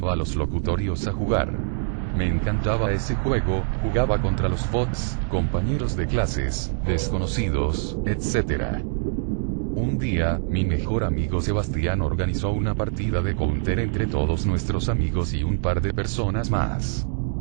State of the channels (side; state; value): left; silent; digital silence